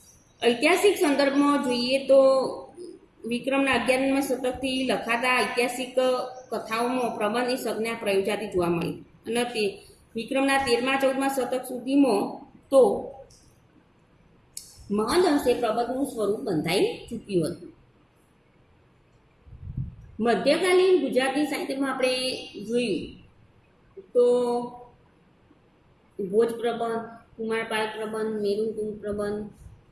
ઐતિહાસિક સંદર્ભમાં જોઈએ તો વિક્રમના 11મા શતકથી લખાતા ઐતિહાસિક કથાઓમાં પ્રબંધની સંજ્ઞા પ્રયોજાતી જોવા મળી અને તે વિક્રમના 13મા-14મા શતક સુધીમાં તો મહદ અંશે પ્રબંધનું સ્વરૂપ બંધાઈ ચૂક્યું હતું. મધ્યકાલીન ગુજરાતી સાહિત્યમાં આપણે જોયું તો ભોજ પ્રબંધ, કુમારપાળ પ્રબંધ, મેરુકુંજ પ્રબંધ,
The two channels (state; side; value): identical; both; correlation 1.00